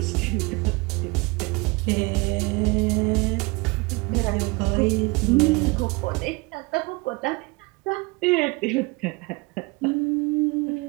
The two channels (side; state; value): left; quieter; 26.1 dB